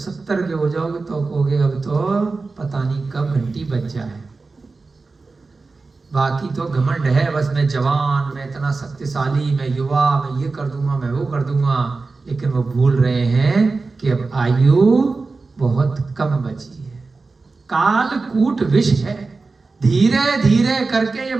के हो जाओगे तो कहोगे अब तो पता नहीं कब घंटी बज जाए। बाकी तो घमंड है, बस मैं जवान, मैं इतना शक्तिशाली, मैं युवा, मैं ये कर दूंगा, मैं वो कर दूंगा। लेकिन वो भूल रहे हैं कि अब आयु बहुत कम बची है। कालकूट विष है। धीरे धीरे करके ये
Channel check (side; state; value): left; quieter; 3.9 dB